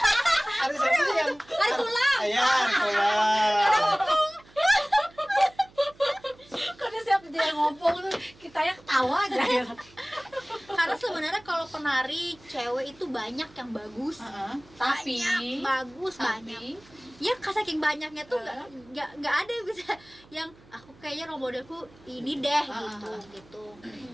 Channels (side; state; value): right; noise; hum, 26 dB below the sound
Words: tulang. Iya, hari tulang. setiap dia ngomong tuh kita ya ketawa aja ya. Karena sebenarnya kalau penari cewek itu banyak yang bagus. Tapi Banyak, bagus banyak. Ya saking banyaknya tuh nggak ada yang bisa yang aku kayaknya role modelku ini deh gitu.